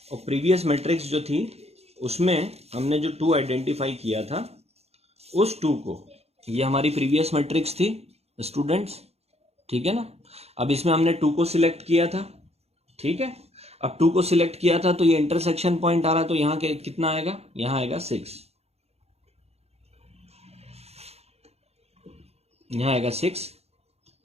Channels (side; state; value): left; late; 0.30 ms